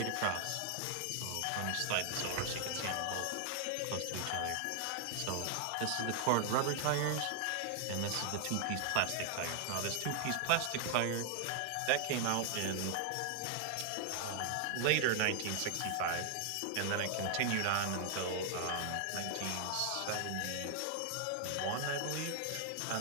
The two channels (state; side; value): different; both; correlation 0.00